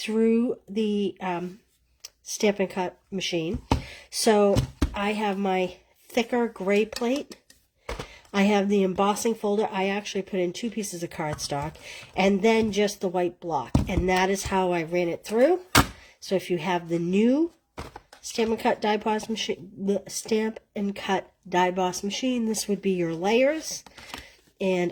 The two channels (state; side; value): identical; both; correlation 1.00